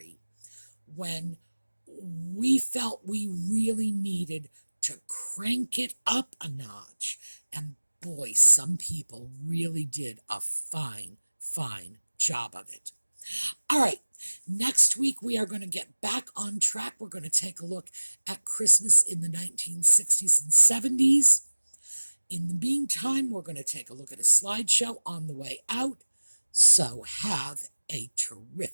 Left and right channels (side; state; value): both; inverted; correlation -1.00